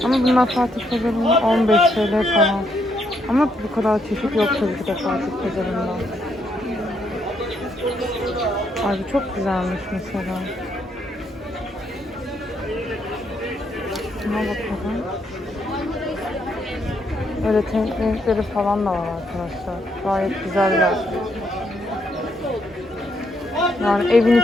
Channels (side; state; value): both; normal; correlation 0.75